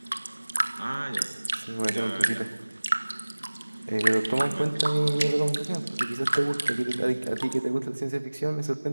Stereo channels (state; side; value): inverted; both; correlation -1.00